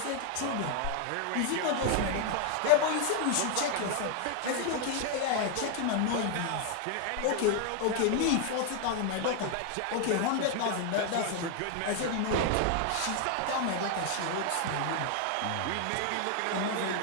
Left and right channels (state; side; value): different; both; correlation 0.00